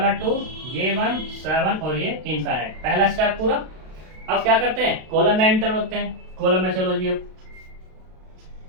2 ये 1 7 और ये इनफाइनाइट। पहला स्टेप पूरा। अब क्या करते हैं कॉलम में एंटर होते हैं। कॉलम में चलो जी। अब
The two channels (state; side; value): late; left; 32 ms